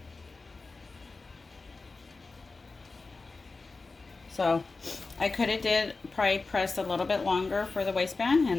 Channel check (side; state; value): right; quieter; 3.8 dB